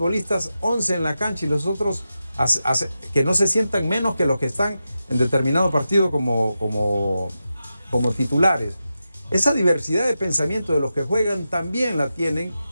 11 en la cancha y los otros que no se sientan menos que los que están en determinado partido como titulares. Esa diversidad de pensamiento de los que juegan también la tienen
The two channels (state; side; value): inverted; both; correlation -0.90